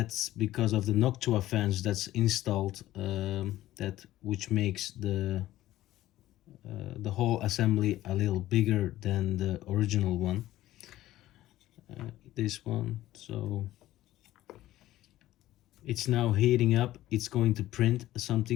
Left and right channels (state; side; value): quieter; right; 14.9 dB